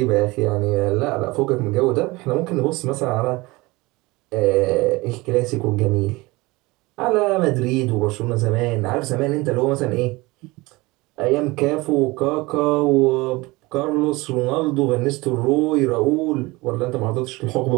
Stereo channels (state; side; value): quieter; left; 22.5 dB